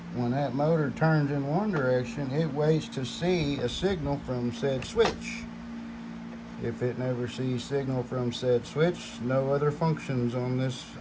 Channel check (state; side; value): identical; both; correlation 1.00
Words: when that motor turns in one direction, it waits to see a signal from said switch. If it never sees signal from said switch, no other functions on this